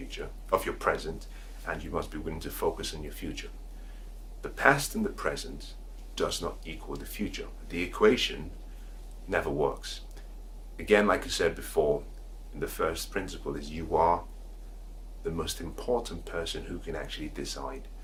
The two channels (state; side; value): identical; both; correlation 1.00